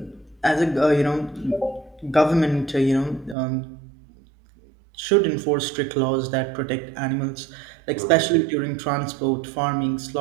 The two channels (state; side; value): drops out; left; at 3.4 s